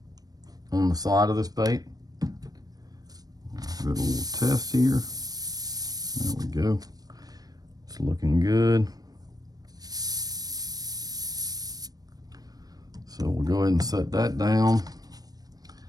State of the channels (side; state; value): left; late; 0.19 ms